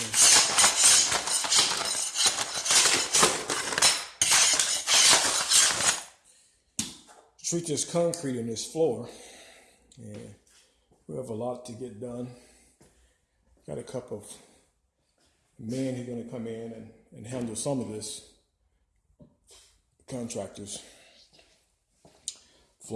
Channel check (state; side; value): identical; both; correlation 1.00